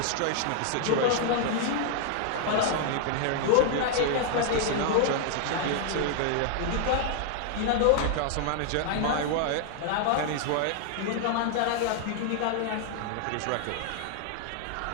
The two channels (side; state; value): both; different; correlation 0.00